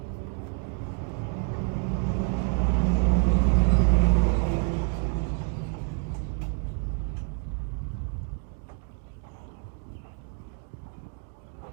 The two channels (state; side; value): quieter; left; 38.8 dB